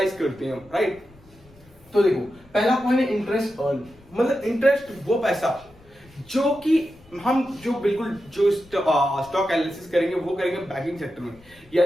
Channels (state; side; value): noise; left; rumble, 26 dB below the sound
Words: करते हैं, राइट। तो देखो पहला पॉइंट है इंटरेस्ट अर्न, मतलब इंटरेस्ट वो पैसा जो कि हम जो स्टॉक एनालिसिस करेंगे वो करेंगे बैंकिंग सेक्टर में,